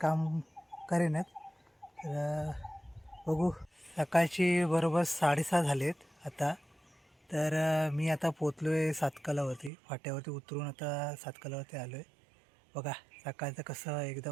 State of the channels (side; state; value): left; drops out; at 9.7 s